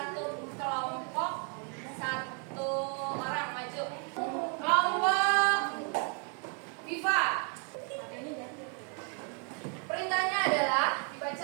kelompok, satu orang maju. Kelompok Viva. Perintahnya adalah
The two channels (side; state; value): left; quieter; 38.6 dB